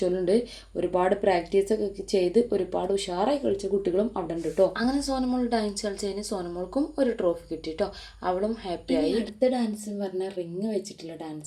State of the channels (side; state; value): both; identical; correlation 1.00